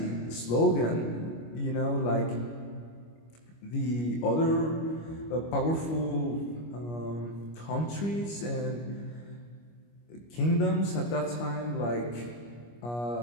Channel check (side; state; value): right; late; 25 ms